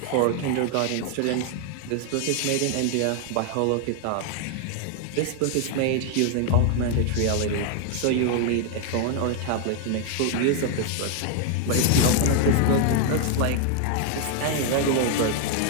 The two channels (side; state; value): both; different; correlation 0.00